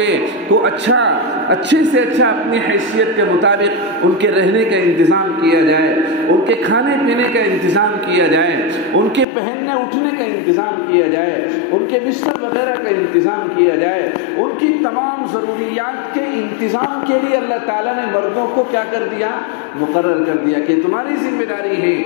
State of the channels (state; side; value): drops out; right; at 9.2 s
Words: کو اچھے سے اچھا اپنی حیثیت کے مطابق ان کے رہنے کا انتظام کیا جائے، ان کے کھانے پینے کا انتظام کیا جائے، ان کے پہننے اٹھنے کا انتظام کیا جائے، ان کے بستر وغیرہ کا انتظام کیا جائے، ان کی تمام ضروریات کے انتظام کے لیے اللہ تعالیٰ نے مردوں کو کیا کر دیا؟ مقرر کر دیا کہ تمہاری ذمہ داری ہے